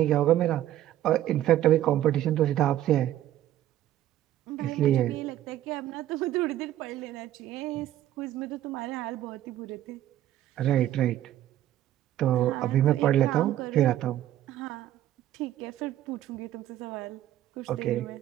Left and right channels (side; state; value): left; quieter; 12.9 dB